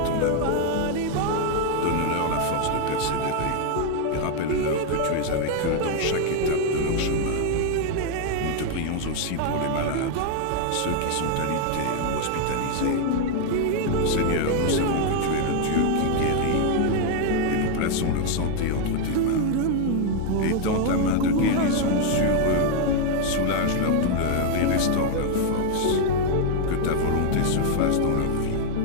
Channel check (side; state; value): both; different; correlation 0.00